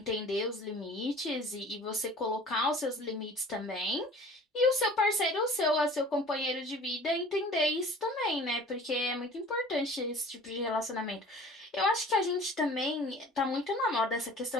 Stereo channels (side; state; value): both; normal; correlation 0.45